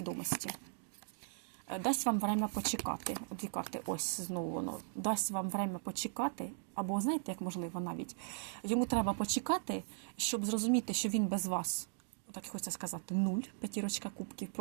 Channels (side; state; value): left; silent; digital silence